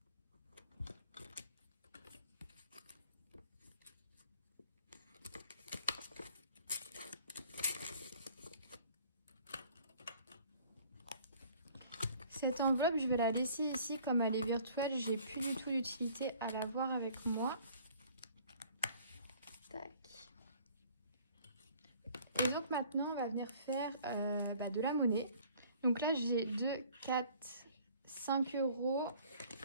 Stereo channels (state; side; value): inverted; both; correlation -0.53